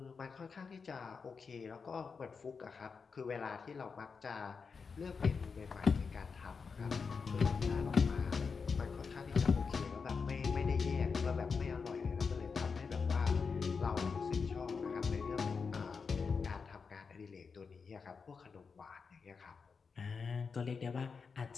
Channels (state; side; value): quieter; right; 5.3 dB